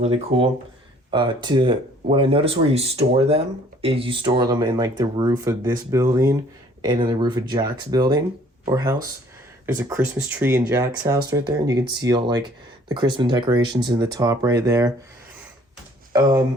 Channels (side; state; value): both; normal; correlation 0.57